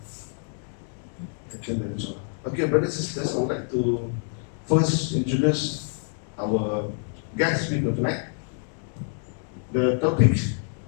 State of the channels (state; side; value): silent; right; 56 dB below the other